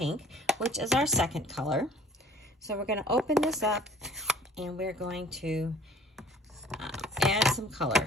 which is our second color. So we're going to open this up and we're going to add some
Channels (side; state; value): both; normal; correlation 0.51